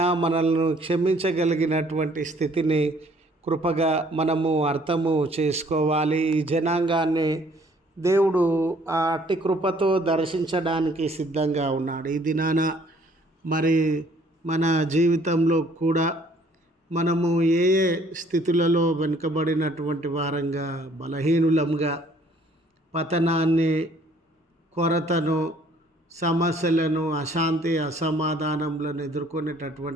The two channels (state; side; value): normal; both; correlation 0.60